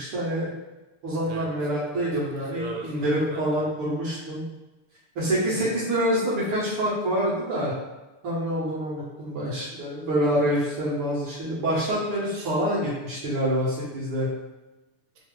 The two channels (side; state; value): left; late; 6.8 ms